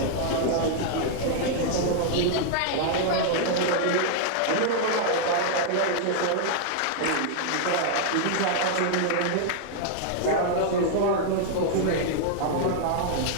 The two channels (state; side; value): different; both; correlation -0.01